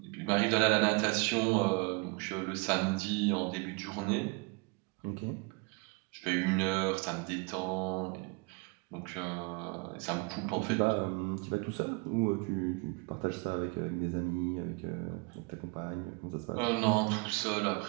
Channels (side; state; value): left; quieter; 29.7 dB